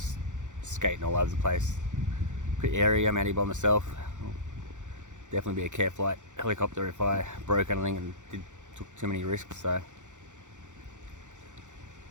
skating all over the place. Pretty airy, I'm out here by myself. Definitely be a care flight helicopter if I broke anything and took too many risks. So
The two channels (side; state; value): left; late; 0.85 ms